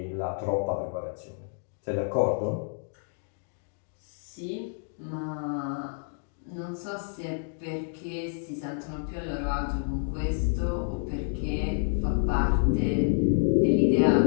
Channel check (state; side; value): silent; right; digital silence